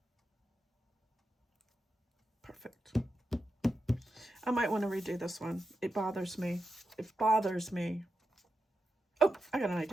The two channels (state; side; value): normal; both; correlation 0.88